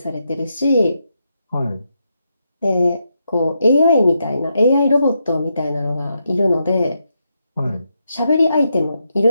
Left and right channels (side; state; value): both; inverted; correlation -0.82